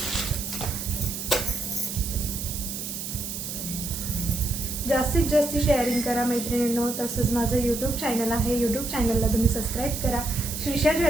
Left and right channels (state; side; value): noise; right; hiss, 6 dB below the sound